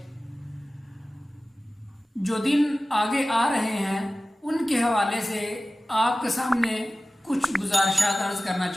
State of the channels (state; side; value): normal; both; correlation 0.96